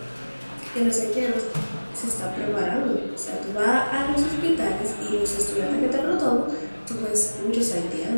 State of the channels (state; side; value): inverted; both; correlation -1.00